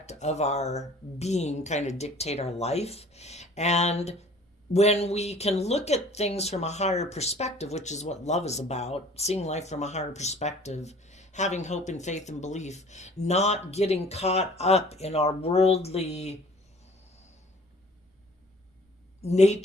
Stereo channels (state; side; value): normal; both; correlation 0.51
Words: of our being kind of dictate our life. And when we can look at things from a higher perspective, which is what love is about, seeing life from a higher perspective, having hope and faith and belief, not getting caught up in our worldly